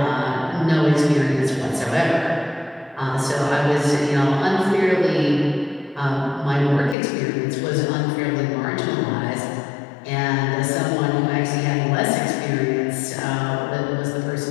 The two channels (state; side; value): drops out; right; at 7.0 s